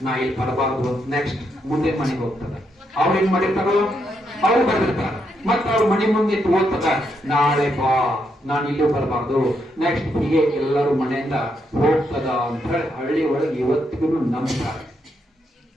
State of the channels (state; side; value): normal; both; correlation 0.79